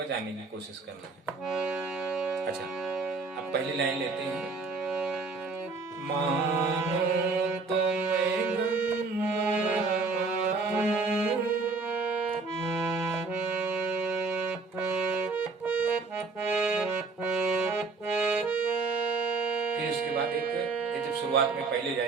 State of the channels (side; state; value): left; quieter; 4.2 dB